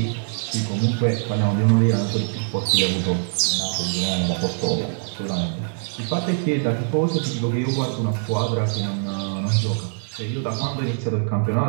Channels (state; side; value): silent; left; digital silence